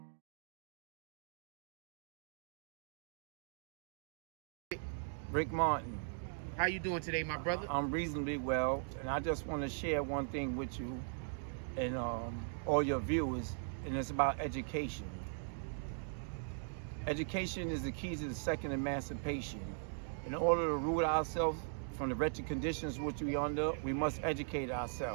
Rick Martin. How you doing today, my brother? I'm reasonably well, and I just want to share one thing with you and all your viewers, and it's about education. Education is the key to the second emancipation. In order to root ourselves from the wretched conditions which we are under, we must educate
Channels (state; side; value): silent; left; digital silence